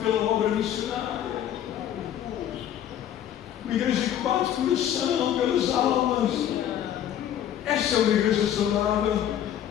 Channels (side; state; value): right; quieter; 10.6 dB